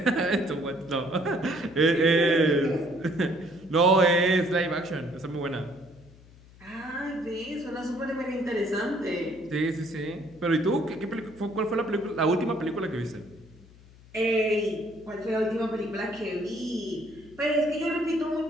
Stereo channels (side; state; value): left; noise; hum, 23 dB below the sound